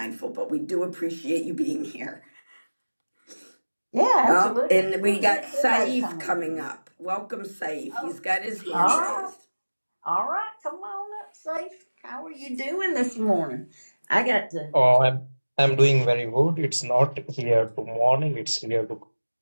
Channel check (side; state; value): both; inverted; correlation -1.00